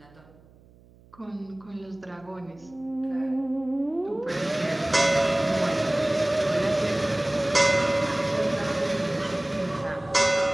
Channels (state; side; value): noise; right; hum, 27 dB below the sound